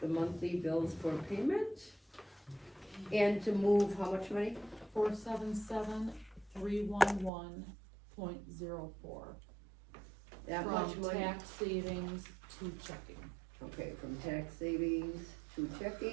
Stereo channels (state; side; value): drops out; left; at 7.3 s